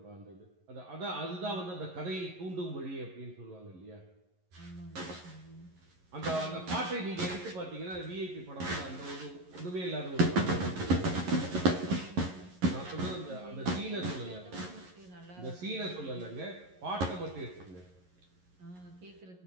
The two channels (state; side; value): late; left; 11 ms